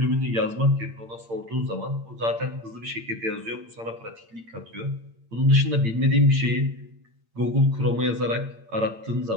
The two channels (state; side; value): late; left; 8.8 ms